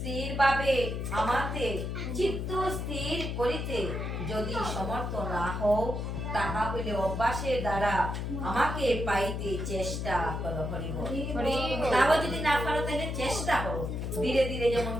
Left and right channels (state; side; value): noise; left; hum, 3 dB below the sound